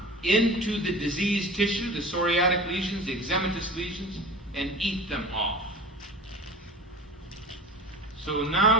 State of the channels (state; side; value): normal; both; correlation 0.37